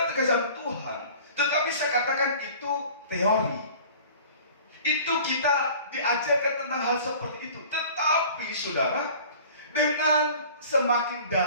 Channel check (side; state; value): both; inverted; correlation -0.45